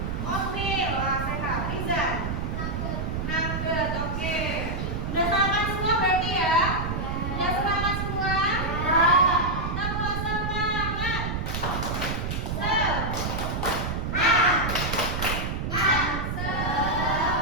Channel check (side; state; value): right; noise; rumble, 2 dB below the sound